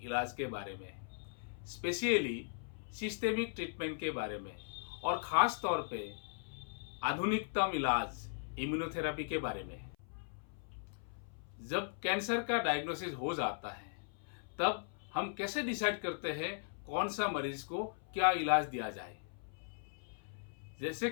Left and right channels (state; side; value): silent; right; 52 dB below the other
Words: इलाज के बारे में, स्पेशली सिस्टेमिक ट्रीटमेंट के बारे में और ख़ास तौर पे आधुनिकतम इलाज इम्यूनोथेरेपी के बारे में। जब कैंसर का डायग्नोसिस हो जाता है तब हम कैसे डिसाइड करते हैं कौन सा मरीज को क्या इलाज दिया जाए। जैसे